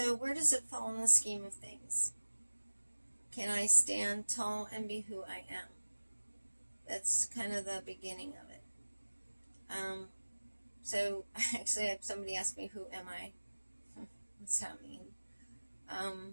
where does it fall in the scheme of things? Can I stand tall and be who I am? That's kind of the beginning of it. So actually I had somebody ask me, who am I? What's that mean?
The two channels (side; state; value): both; inverted; correlation -1.00